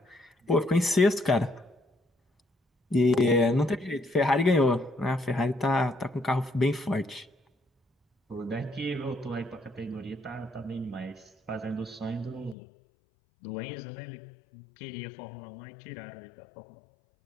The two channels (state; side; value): drops out; right; at 12.6 s